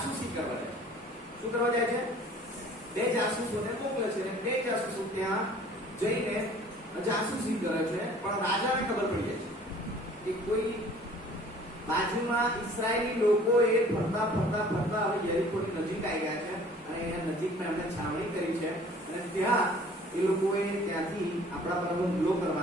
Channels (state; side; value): normal; both; correlation 0.51